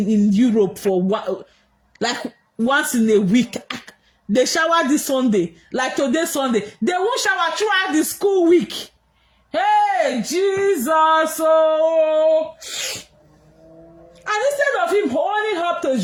Europe for like once in a week. They shower this Sunday, like today Sunday. They won't shower throughout the school week. Hey, Jesus! Oh. And instead of him holding up to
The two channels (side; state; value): both; identical; correlation 1.00